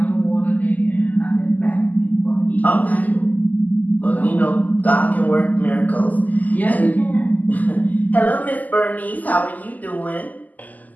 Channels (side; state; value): right; late; 0.080 ms